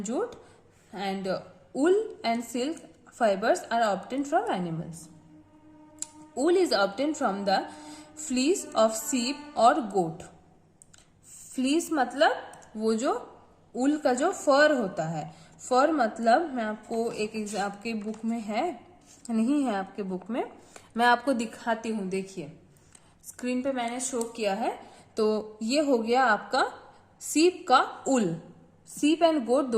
jute, and wool and silk fibers are obtained from animals। wool is obtained from the fleece of sheep or goat। fleece मतलब वो जो wool का जो फर होता है, फर मतलब मैं आपको आपके बुक में है, नहीं है आपके बुक में, मैं आपको दिखाती हूँ। देखिए स्क्रीन पे मैंने शो किया है, तो ये हो गया आपका सीप का उल। सीप एंड गोट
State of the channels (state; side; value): identical; both; correlation 1.00